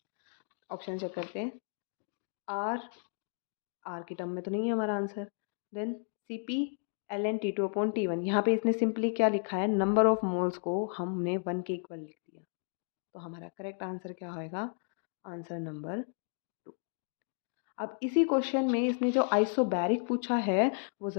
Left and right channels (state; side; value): silent; right; 56 dB below the other